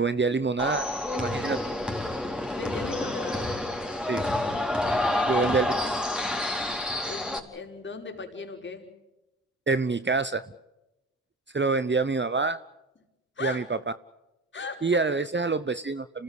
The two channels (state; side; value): normal; both; correlation 0.47